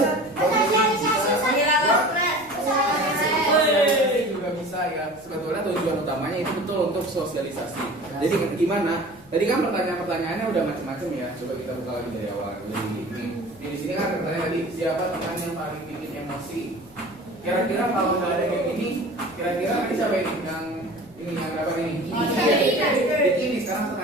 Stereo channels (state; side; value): noise; left; rumble, 25 dB below the sound